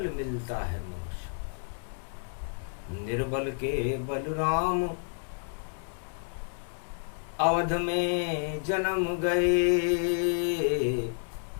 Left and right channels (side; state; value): right; silent; 58 dB below the other